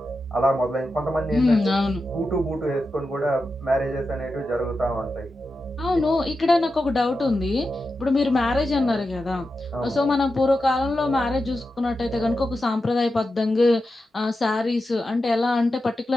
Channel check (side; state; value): both; normal; correlation 0.90